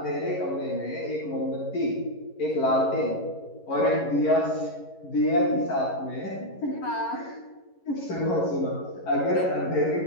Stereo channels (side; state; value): right; late; 11 ms